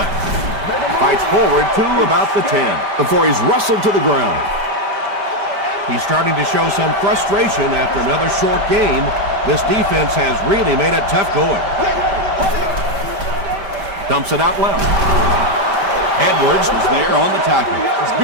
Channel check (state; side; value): late; left; 5.1 ms